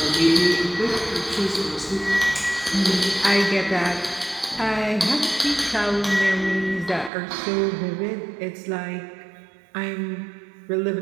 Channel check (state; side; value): drops out; left; at 7.1 s